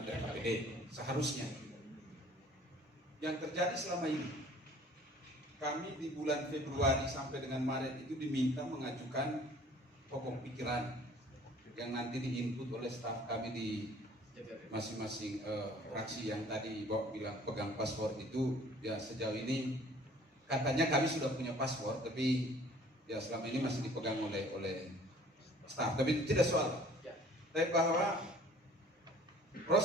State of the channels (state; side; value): normal; both; correlation 0.52